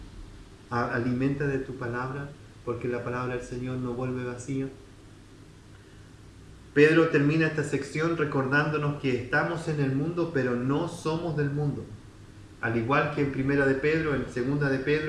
alimenta de tu palabra, porque la palabra del Señor no vuelve vacía. Pedro termina esta sección recordándonos que estamos en el mundo, pero no somos del mundo. Al igual que en Primera de Pedro, en Segunda de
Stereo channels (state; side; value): identical; both; correlation 1.00